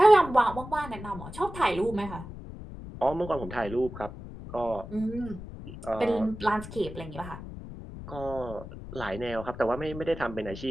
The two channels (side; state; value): left; noise; rumble, 12 dB below the sound